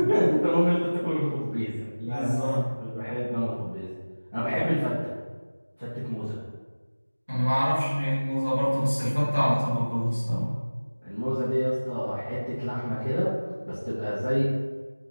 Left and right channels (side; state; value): both; inverted; correlation -1.00